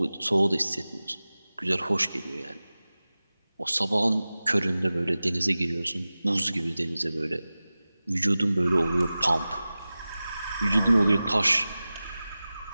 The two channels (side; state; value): both; inverted; correlation -0.96